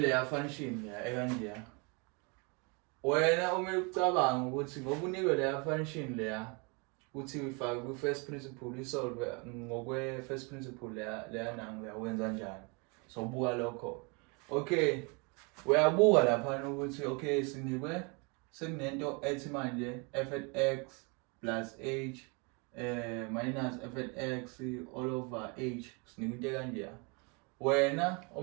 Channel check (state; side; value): quieter; left; 31.6 dB